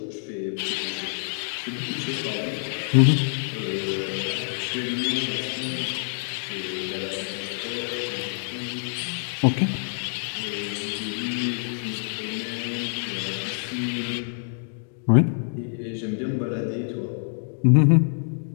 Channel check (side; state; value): right; silent; digital silence